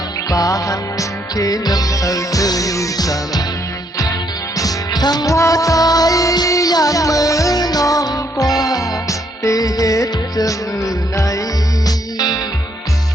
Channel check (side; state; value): both; normal; correlation 0.72